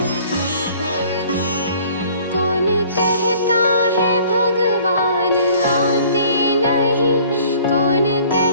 कौन कहता है भगवान आते नहीं कौन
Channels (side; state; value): both; inverted; correlation -0.53